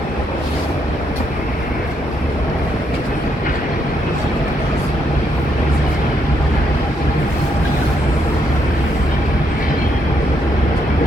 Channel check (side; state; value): both; normal; correlation 0.75